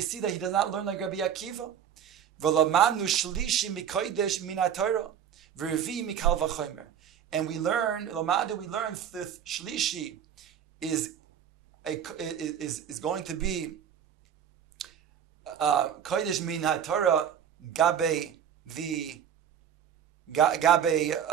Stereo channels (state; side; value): quieter; left; 8.8 dB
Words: see that he does not learn like Rabbi Akiva. V'lamanu Shlishi mikodesh minatorah Revi mikal v'chomer. And we learn the Shlishi is going to be kodesh min haTorah gabe